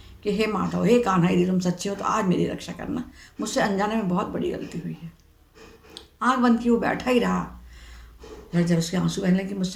कि हे माधव, हे कान्हा, यदि तुम सच्चे हो तो आज मेरी रक्षा करना, मुझसे अनजाने में बहुत बड़ी गलती हुई है। आँख बंद की वो बैठा ही रहा। जब उसके आंसू बहने लगे,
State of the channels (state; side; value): identical; both; correlation 1.00